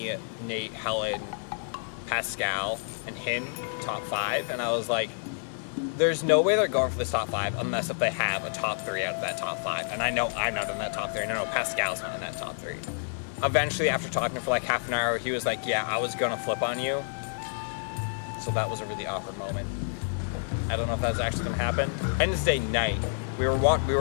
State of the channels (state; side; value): silent; right; digital silence